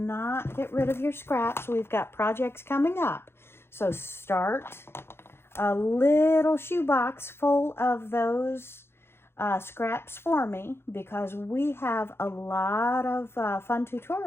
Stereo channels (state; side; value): late; right; 0.12 ms